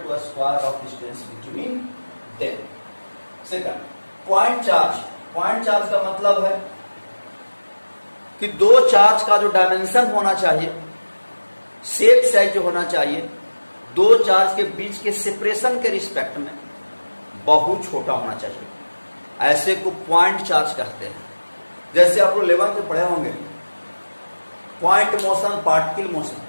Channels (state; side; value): inverted; both; correlation -1.00